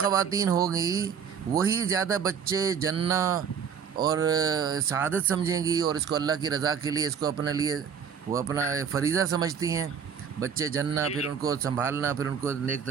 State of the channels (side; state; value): left; quieter; 7.1 dB